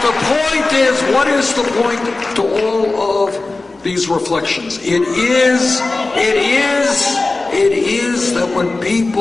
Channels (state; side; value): quieter; right; 3.3 dB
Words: the point is, what is the point to all of these reflections? It It is that when